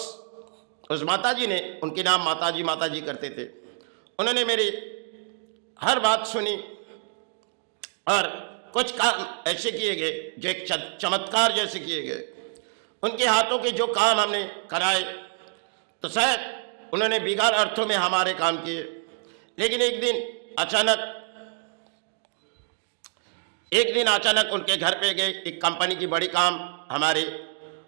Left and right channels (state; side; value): silent; left; 57 dB below the other